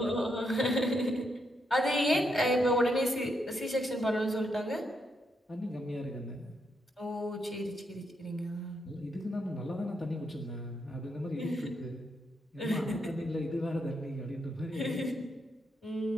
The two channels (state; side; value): normal; both; correlation 0.79